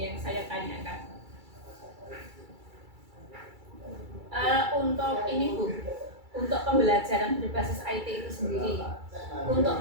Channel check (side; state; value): left; late; 2.3 ms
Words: yang saya tanyakan. Untuk ini Bu, untuk pembelajaran berbasis IT itu sendiri, untuk